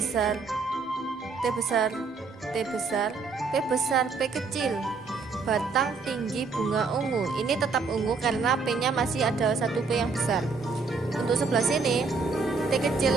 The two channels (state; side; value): quieter; left; 4.5 dB